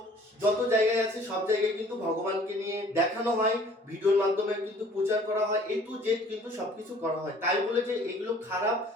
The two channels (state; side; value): normal; both; correlation 0.53